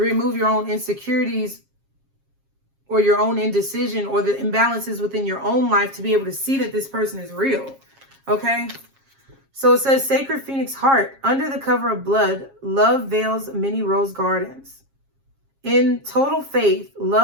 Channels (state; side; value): late; left; 7.4 ms